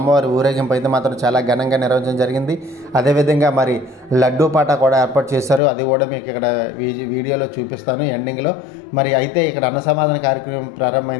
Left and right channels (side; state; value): right; drops out; at 5.6 s